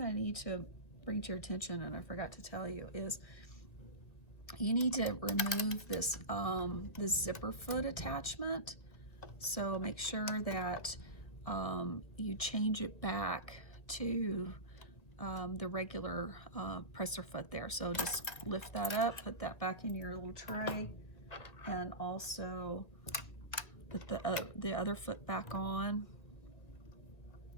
I need to bring to your attention, and I forgot to tell you, is you need to remove this this zipper foot attachment. So make sure that you change it back to the regular presser foot there. So just lift that up, put that back in your little tray, and also put the other foot back on,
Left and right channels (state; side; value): late; right; 1.7 ms